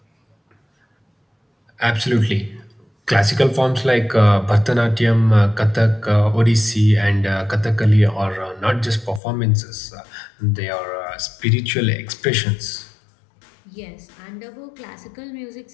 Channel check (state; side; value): drops out; right; at 9.2 s